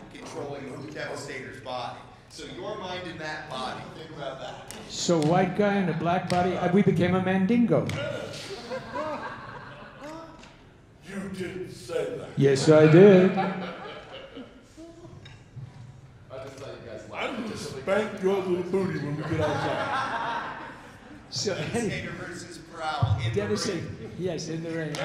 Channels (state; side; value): identical; both; correlation 1.00